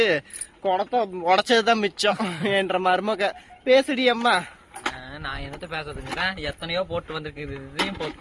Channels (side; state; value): both; identical; correlation 1.00